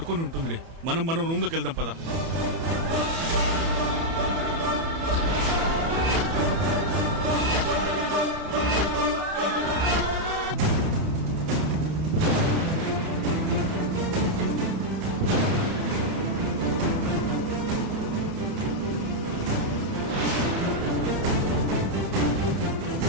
ఉంటుందిలే. మనం రూమ్ లోకి వెళ్దాం పదా.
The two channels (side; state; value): left; late; 30 ms